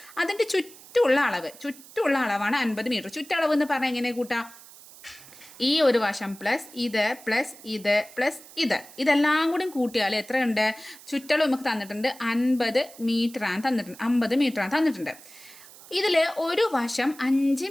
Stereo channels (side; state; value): right; noise; hiss, 20 dB below the sound